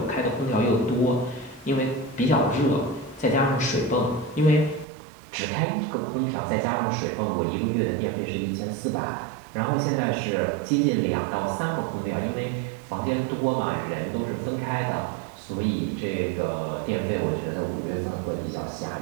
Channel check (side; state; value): left; drops out; at 4.9 s